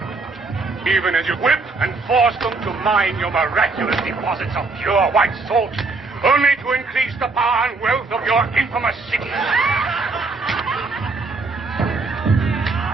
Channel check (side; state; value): left; quieter; 3.9 dB